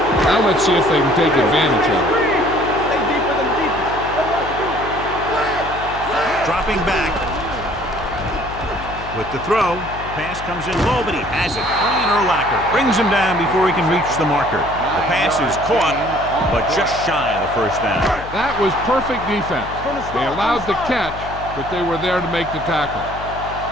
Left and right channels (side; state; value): left; noise; hum, 12 dB below the sound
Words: Now let's see if they can take advantage of it. Stay deeper than deepest. Dropping back. With the throw, the pass comes in low, but he has it. Brian Urlacher brings him down before he can reach the marker. The pass is caught, but just shy of the 1st down. That was perfect defense. They allowed the catch, but they were there to make the tackle.